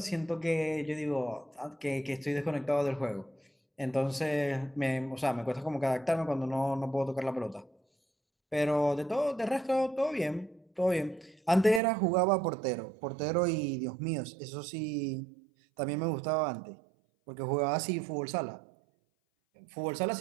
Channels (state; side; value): drops out; left; at 11.8 s